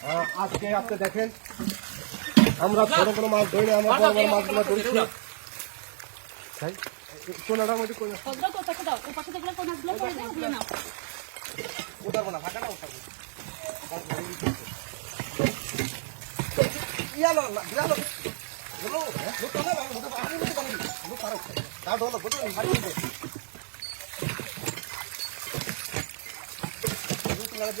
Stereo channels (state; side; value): silent; left; digital silence